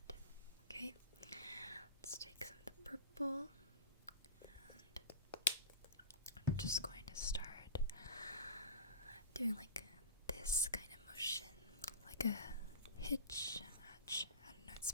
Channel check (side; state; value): both; inverted; correlation -0.31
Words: Okay, let's take some of the purple, and I'm just going to start doing like this kind of motion, like a hitch. I don't know, it's